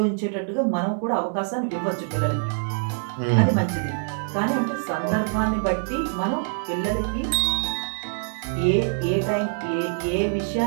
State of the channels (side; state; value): left; silent; 62 dB below the other